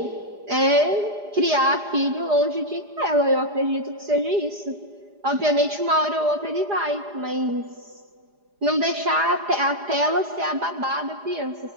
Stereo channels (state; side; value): late; left; 4.9 ms